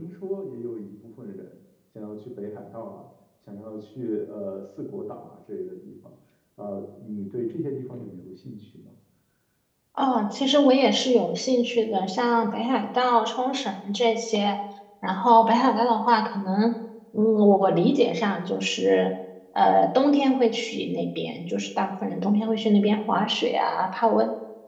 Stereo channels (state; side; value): identical; both; correlation 1.00